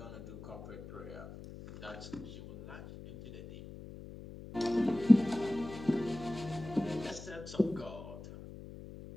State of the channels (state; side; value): noise; left; hum, 13 dB below the sound